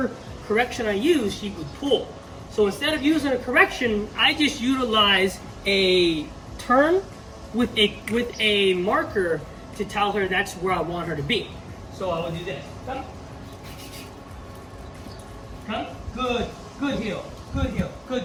correction I used, she would pull. So instead of using a correction, I just utilize a turn with a marker to tell her that's where I want her to be. So I will do this. Come. Come. Good. Good heel. Good heel.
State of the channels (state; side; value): identical; both; correlation 1.00